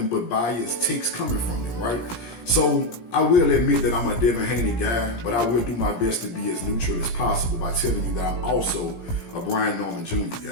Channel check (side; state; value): right; late; 17 ms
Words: but biased takes coming from them, right? So I will admit that I'm a Devin Haney guy, but I will do my best to be as neutral as possible by telling you that I'm also a Brian Norman Jr.